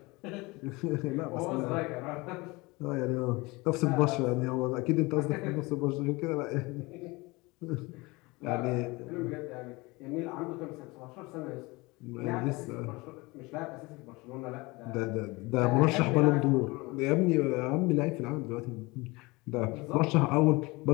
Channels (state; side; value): quieter; right; 23.8 dB